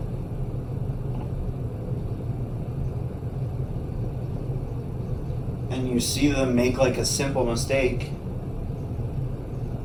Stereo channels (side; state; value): both; identical; correlation 1.00